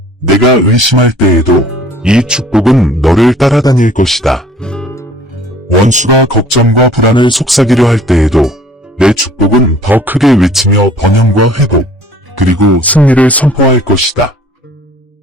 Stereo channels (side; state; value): both; normal; correlation 0.53